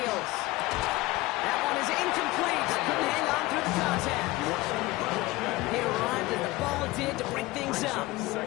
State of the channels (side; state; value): right; quieter; 19.7 dB